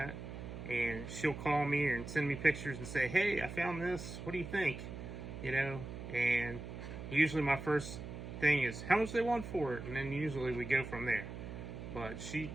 And she'll call me and send me pictures and say, hey, I found this, what do you think? You know, and usually my first thing is how much they want for it, and then usually we go from there. But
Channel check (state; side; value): noise; right; hum, 9 dB below the sound